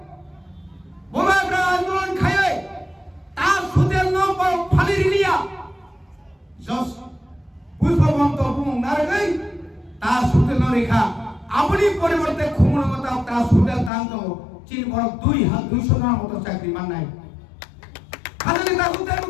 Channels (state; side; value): drops out; right; at 13.9 s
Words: বুবাগ্রা আন্দোলন খায় তা সুদিল ন ফালি রিলিয়া জস পুষ্পবন্ত বুং নারগৈ তা সুদিল রেখা আপনি পরিবর্তে খুমনগতা তা সুদিল দান তো চীন বড় 200 জনের মতো চাকরি মান নাই খালি তা সুদিল